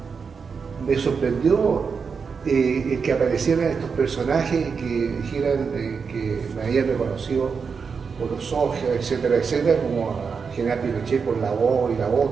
me sorprendió es que aparecieran estos personajes que dijeran que me habían reconocido por los ojos, etcétera, etcétera, como a General Pinochet por la voz y la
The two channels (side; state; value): left; quieter; 5.6 dB